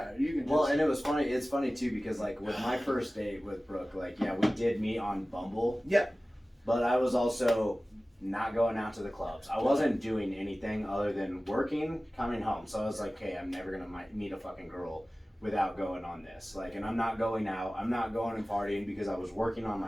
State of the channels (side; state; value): both; normal; correlation 0.97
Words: you can just Well, and it was funny. It's funny too because like with my first date with Brooke, like we did meet on Bumble. Yeah. But I was also not going out to the clubs. I wasn't doing anything other than working, coming home. So I was like, hey, I'm never gonna meet a fucking girl without going on this. Like, and I'm not going out. I'm not going and partying because I was working on